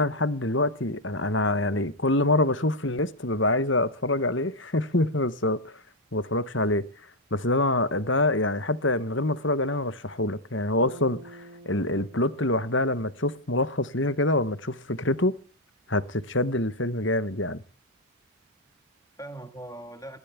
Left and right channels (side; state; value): both; normal; correlation 0.00